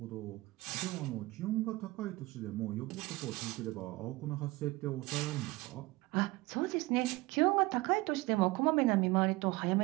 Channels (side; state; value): left; quieter; 20.9 dB